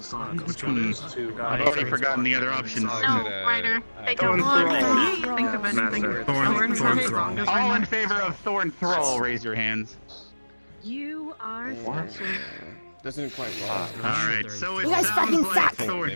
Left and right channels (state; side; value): inverted; both; correlation -1.00